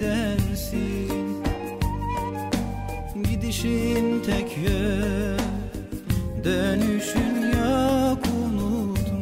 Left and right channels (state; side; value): identical; both; correlation 1.00